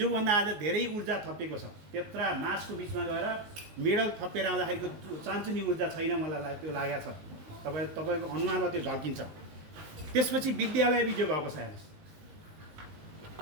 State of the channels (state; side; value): late; left; 19 ms